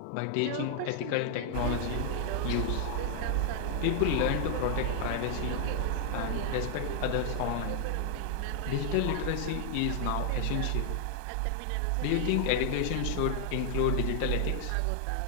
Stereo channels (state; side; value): different; both; correlation 0.00